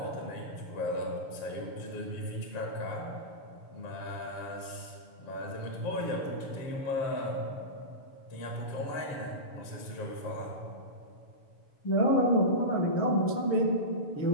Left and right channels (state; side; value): late; right; 7.0 ms